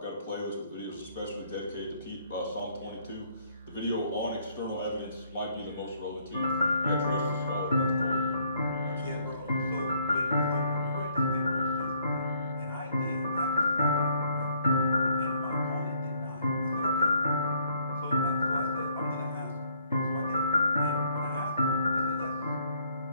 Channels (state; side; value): inverted; both; correlation -0.66